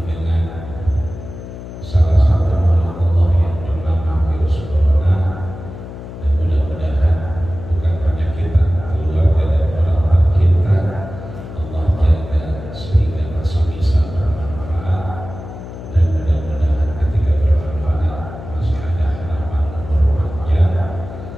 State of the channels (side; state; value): left; noise; hum, 12 dB below the sound